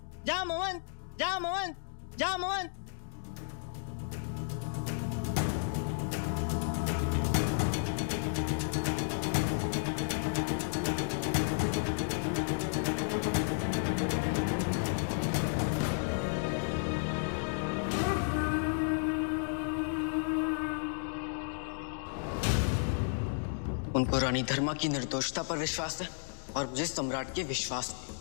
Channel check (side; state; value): right; silent; digital silence